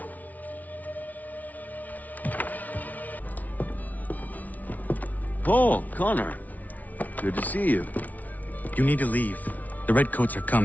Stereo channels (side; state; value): right; late; 0.075 ms